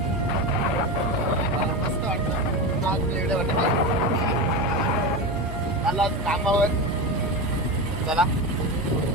मस्त वाटतं. आज व्हिडिओ बनवतात मला कामावर. चला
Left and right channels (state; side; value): normal; both; correlation 0.21